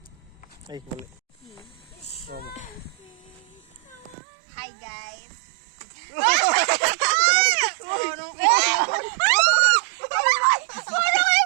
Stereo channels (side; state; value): left; drops out; at 4.2 s